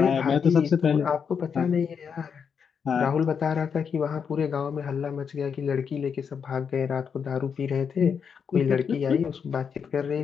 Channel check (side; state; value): right; quieter; 6.7 dB